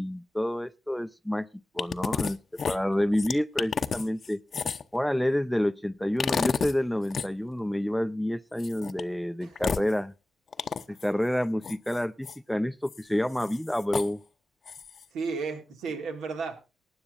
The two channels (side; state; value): both; normal; correlation 0.96